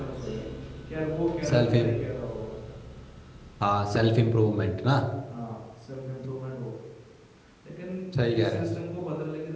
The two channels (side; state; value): both; identical; correlation 1.00